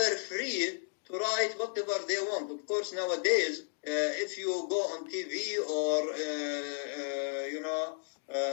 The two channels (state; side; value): silent; right; digital silence